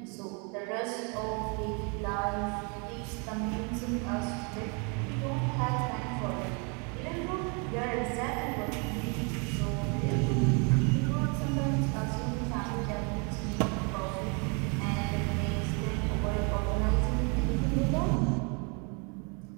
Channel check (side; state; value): left; quieter; 34.1 dB